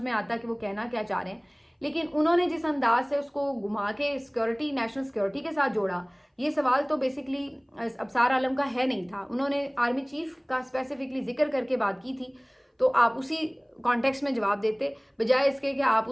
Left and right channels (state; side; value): identical; both; correlation 1.00